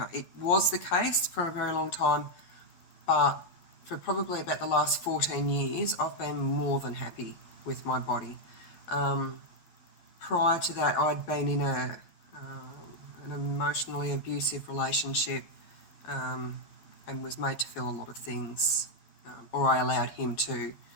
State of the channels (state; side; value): late; right; 11 ms